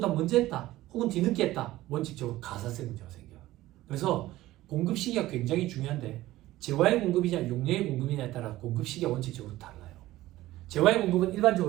먼저 했다 혹은 뒤늦게 했다 원칙적으로 가사세 문제가 생겨요. 그래서 공급 시기가 굉장히 중요한데 재화의 공급이냐 용역의 공급이냐에 따라 공급 시기가 원칙적으로 달라요. 재화의 공급은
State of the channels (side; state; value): left; quieter; 16.3 dB